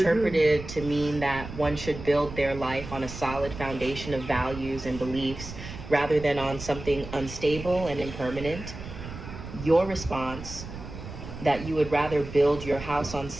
to mean that one should build their life on a solid foundation of values and beliefs rather than on something unstable and impermanent. Your response, that you would rather build your house on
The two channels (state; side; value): noise; right; rumble, 11 dB below the sound